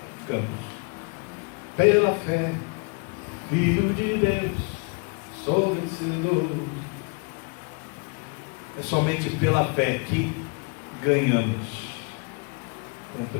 Campos. Pela fé, Filho de Deus, sou vencedor. É somente pela fé que ganhamos um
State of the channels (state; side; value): quieter; right; 33.7 dB